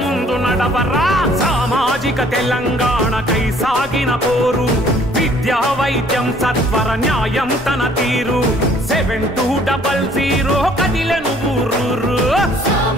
ముందు నడవరా సామాజిక తెలంగాణకై సాగిన పోరు విద్యా వైద్యం సత్వర న్యాయం తన తీరు 7200 కదిలెను ఊరూరు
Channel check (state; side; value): normal; both; correlation 0.59